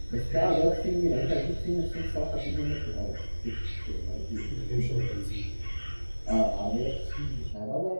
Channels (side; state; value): both; inverted; correlation -1.00